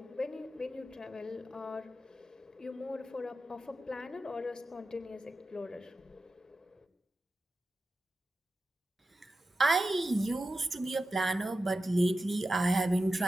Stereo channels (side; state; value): both; normal; correlation 0.92